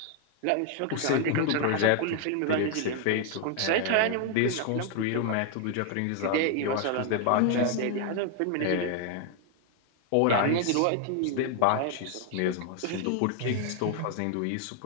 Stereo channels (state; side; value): different; both; correlation 0.00